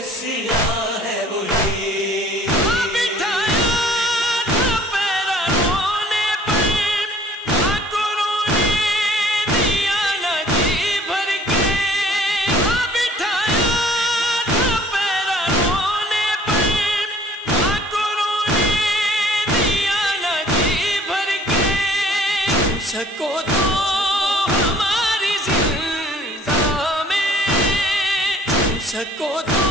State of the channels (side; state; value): both; normal; correlation 0.54